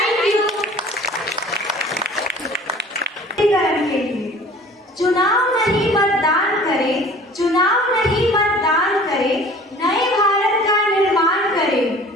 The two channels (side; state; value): both; normal; correlation 0.47